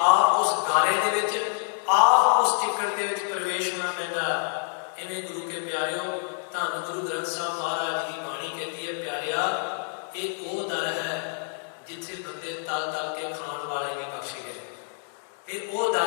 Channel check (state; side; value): silent; right; digital silence